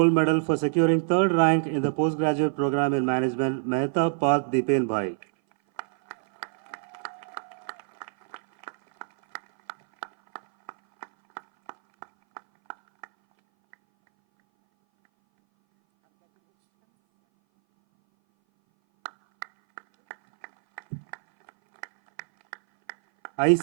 Medal for securing third rank in the postgraduate program in management, Mehta Path Dipen Bhai.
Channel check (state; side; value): silent; left; 59 dB below the other